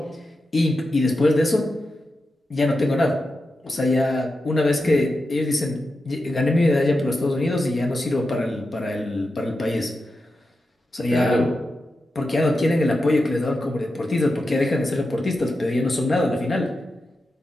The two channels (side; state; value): both; normal; correlation 0.90